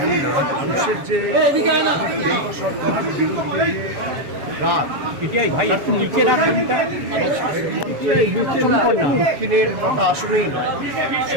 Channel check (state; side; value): late; left; 7.1 ms